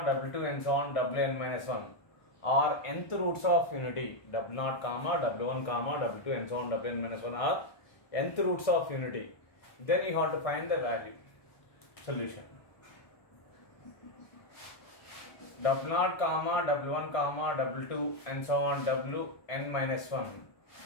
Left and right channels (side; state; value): right; late; 1.6 ms